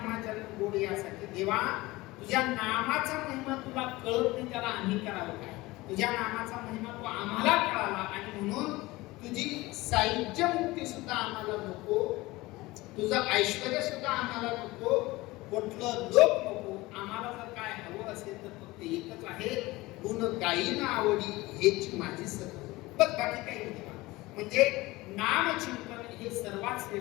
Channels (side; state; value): right; quieter; 20.4 dB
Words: जन्म गोड यासाठी. देवा तुझ्या नामाचा महिमा तुला कळत नाही, त्याला आम्ही करावं काय? तुझ्या नामाचा महिमा तू आम्हाला कळाला आणि म्हणून तुझी साहित्य मुक्ती सुद्धा आम्हाला नको, तुझं ऐश्वर्य सुद्धा आम्हाला नको, कुठलं लोक नको. आम्हाला जर काय हवं असेल तर फक्त एकच आहे, गुण गायीन आवडी हेच माझी सत्य. बस बाकी काही नाही. म्हणजे नामचिंतन हे सर्वात